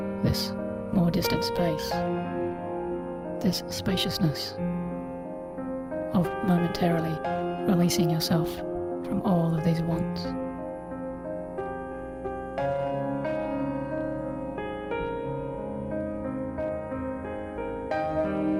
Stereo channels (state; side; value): identical; both; correlation 1.00